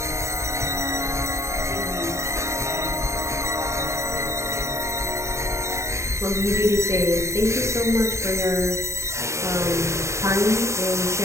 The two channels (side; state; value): left; late; 0.14 ms